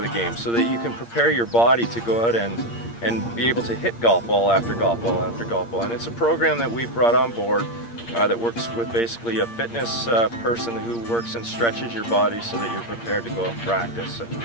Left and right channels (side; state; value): right; late; 8.6 ms